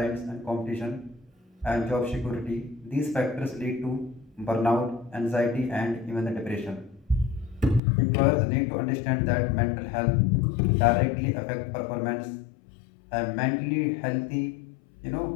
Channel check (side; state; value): right; drops out; at 7.8 s